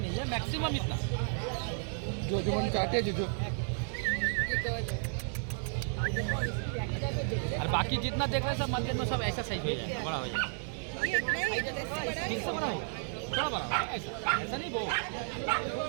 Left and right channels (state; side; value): silent; left; 56 dB below the other